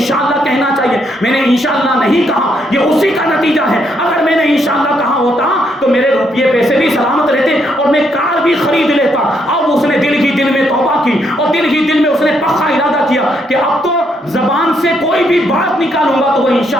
کہنا چاہیے. میں نے انشاءاللہ نہیں کہا، یہ اسی کا نتیجہ ہے. اگر میں نے انشاءاللہ کہا ہوتا تو میرے روپیے پیسے بھی سلامت رہتے اور میں کار بھی خرید لیتا. اب اس نے دل ہی دل میں توبہ کی اور دل ہی دل میں اس نے پختہ ارادہ کیا کہ اب تو زبان سے کوئی بھی بات نکالوں گا تو وہ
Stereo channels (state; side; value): normal; both; correlation 0.75